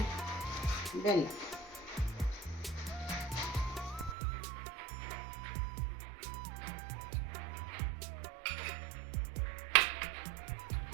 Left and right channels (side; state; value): left; drops out; at 4.2 s